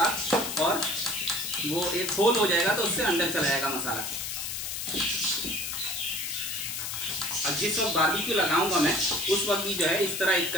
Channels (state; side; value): noise; left; hiss, 4 dB below the sound